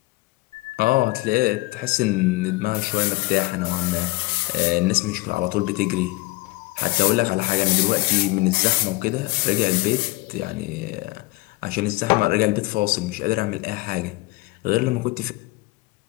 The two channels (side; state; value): right; quieter; 21.4 dB